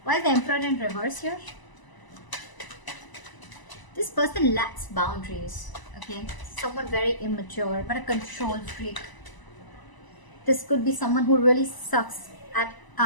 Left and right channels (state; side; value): late; right; 1.0 ms